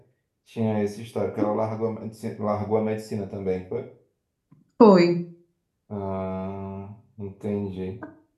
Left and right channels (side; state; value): both; identical; correlation 1.00